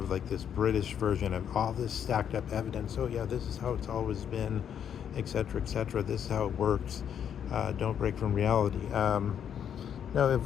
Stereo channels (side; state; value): right; quieter; 8.7 dB